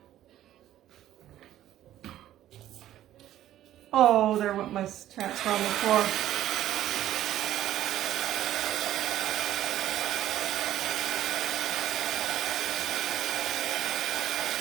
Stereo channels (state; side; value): quieter; left; 12.8 dB